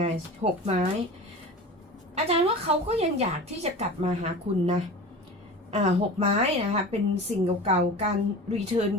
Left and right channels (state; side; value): normal; both; correlation 0.35